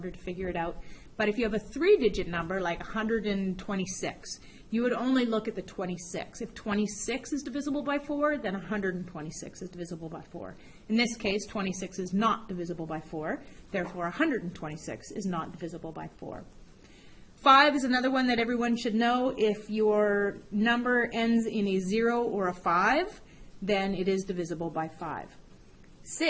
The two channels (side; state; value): both; identical; correlation 1.00